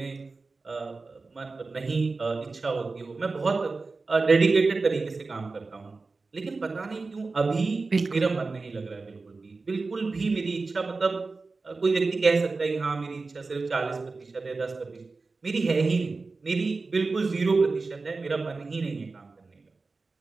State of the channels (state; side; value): quieter; left; 3.9 dB